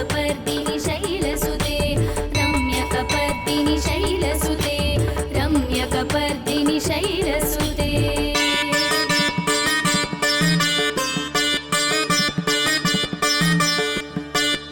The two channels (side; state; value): both; identical; correlation 1.00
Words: शैलसुते रम्यकपर्दिनि शैलसुते रम्यकपर्दिनि शैलसुते